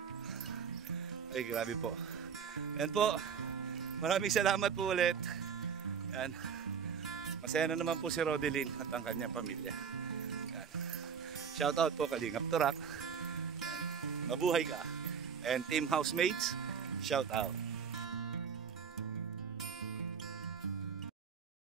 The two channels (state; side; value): quieter; left; 6.9 dB